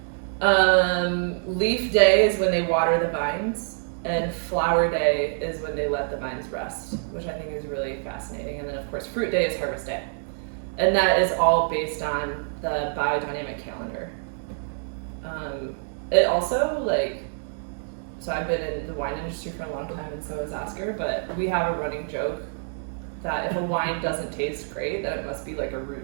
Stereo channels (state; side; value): silent; left; digital silence